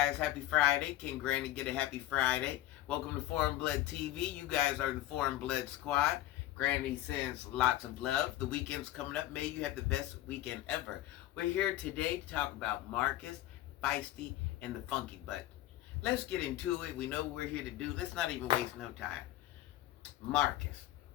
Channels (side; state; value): right; quieter; 14.9 dB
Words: happy Friday. Can Granny get a happy Friday? Welcome to Foreign Blood TV. You guys are the Foreign Blood Squad. Granny sends lots of love. The weekend's coming up. May you have the best weekend ever. We're here today to talk about Marcus, Feisty, and the Funky Butt. Let's get into it. We know what we're here to do. Let's not even waste no time. Marcus,